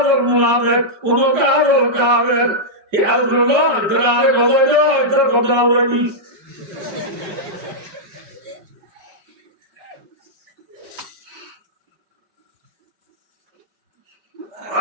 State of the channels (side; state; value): left; late; 5.0 ms